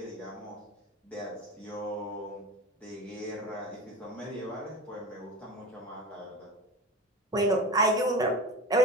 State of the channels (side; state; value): both; normal; correlation 0.29